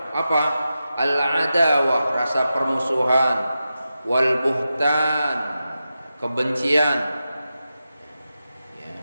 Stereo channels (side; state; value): both; inverted; correlation -0.91